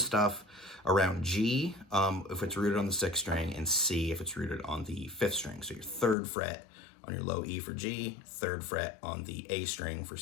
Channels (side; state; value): right; drops out; at 6.2 s